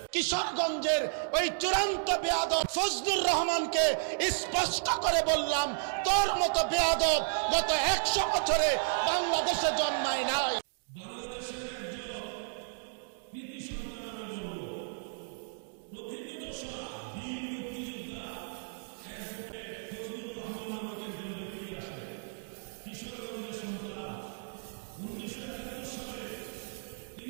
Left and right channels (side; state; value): left; silent; digital silence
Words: কিশোরগঞ্জের ওই চূড়ান্ত বেয়াদব ফজলুর রহমানকে স্পষ্ট করে বললাম, তোর মতো বেয়াদব গত 100 বছরে বাংলাদেশে জন্মায় নাই। বাংলাদেশের একজন কৃতি সন্তান আমি বলবো, প্রথিতযশা বীর মুক্তিযোদ্ধা অ্যাডভোকেট ফজলুর রহমান নামক একজন ব্যক্তি আসে, কিশোরগঞ্জের সন্তান। 1971 সালে